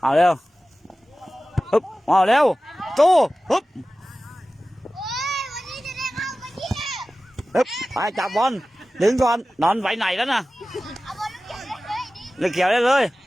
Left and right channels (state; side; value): normal; both; correlation 0.96